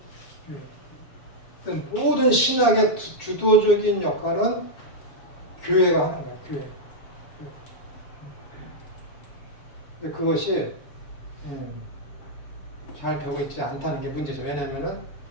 모든 신학의 주도적인 역할은 교회가 하는 거예요. 교회. 근데 그것이 잘 되고 있지 않다는 게 문제죠. 왜냐하면은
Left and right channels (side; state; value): right; late; 6.9 ms